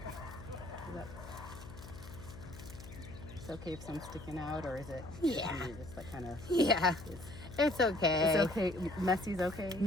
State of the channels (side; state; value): left; noise; hum, 14 dB below the sound